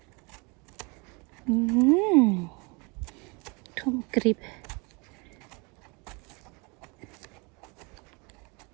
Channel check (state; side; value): quieter; left; 30.0 dB